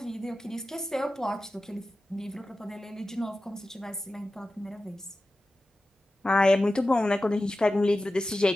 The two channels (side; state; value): both; normal; correlation 0.94